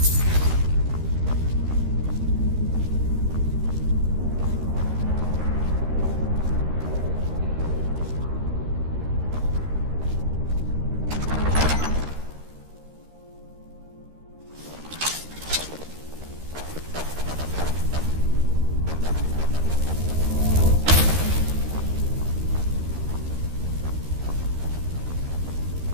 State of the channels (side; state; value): left; late; 13 ms